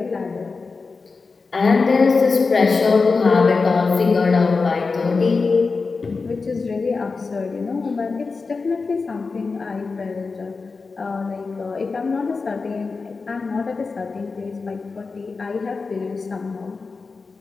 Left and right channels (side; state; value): right; quieter; 4.4 dB